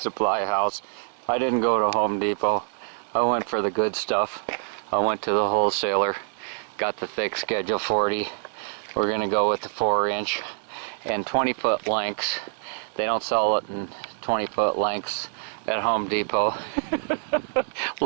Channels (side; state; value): left; silent; digital silence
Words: house. I didn't go to Home Depot. I went for the good stuff. I went to the wholesaler, got the thick Schedule 40. We're gonna go with the 4-inch and 20-foot lengths. They don't sell it in 20-foot lengths at Home Depot.